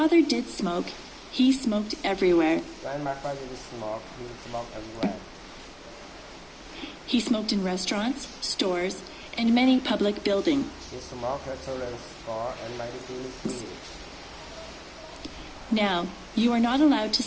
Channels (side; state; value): both; identical; correlation 1.00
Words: did smoke, he smoked everywhere. When my father did smoke, he smoked everywhere. He smoked in restaurants, stores, and many public buildings. He smoked at children's store and many buildings. Now, you are not allowed to